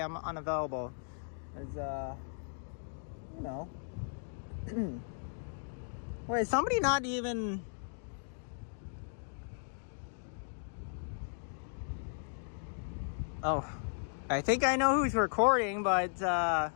I'm unavailable. Cause, you know. Wait, somebody not even... Oh, I think I know who's recording, but,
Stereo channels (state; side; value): silent; right; digital silence